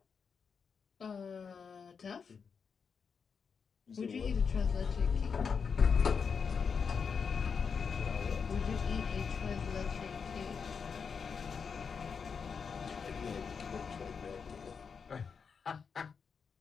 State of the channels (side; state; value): right; quieter; 6.0 dB